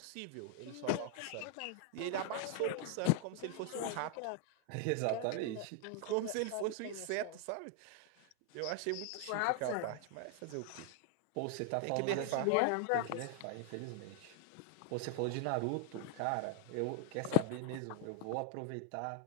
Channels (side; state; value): both; different; correlation 0.00